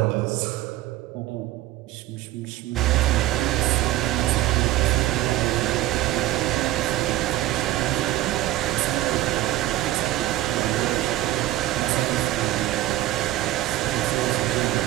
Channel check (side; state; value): left; quieter; 15.6 dB